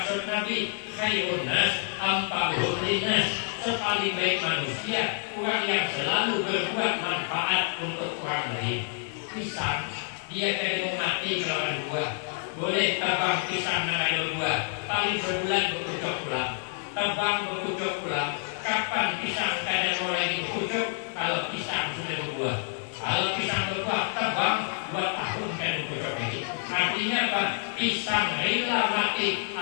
Nabi, khairun nas ampahum linnas. Sepaling baik manusia, orang yang selalu berbuat manfaat untuk orang lain. Pisang, dia kayak mau mati kalau ada buah. Boleh tabang pisang dan ada buah, paling sebulan berkucuk pulang. Tabang berkucuk pulang. Kapan pisang kadang mulai berkucuk? Kalau pisang sudah berbuah. Kalau pisang berbuah, tabang 2 tahun kan berkucuk lagi. Artinya apa? Pisang rela mati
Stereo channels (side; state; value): right; silent; 56 dB below the other